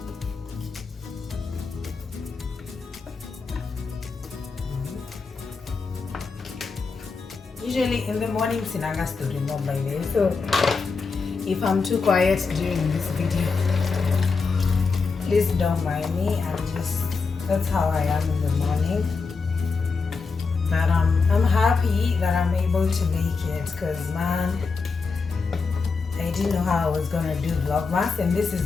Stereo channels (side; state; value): right; quieter; 4.7 dB